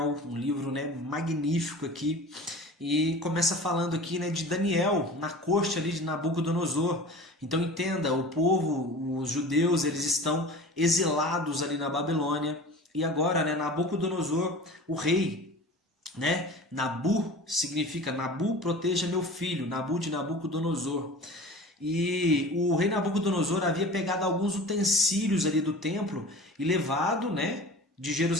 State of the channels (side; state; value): both; normal; correlation 0.38